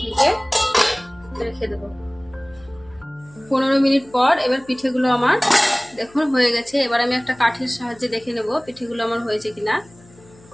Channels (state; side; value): noise; left; hum, 26 dB below the sound